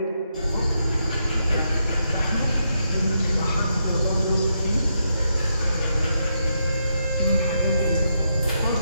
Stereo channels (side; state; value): both; inverted; correlation -0.81